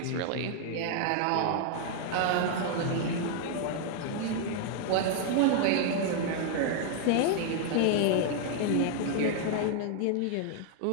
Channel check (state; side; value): different; both; correlation 0.00